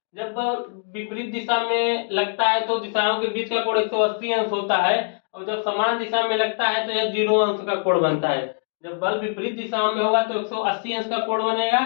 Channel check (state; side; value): silent; right; digital silence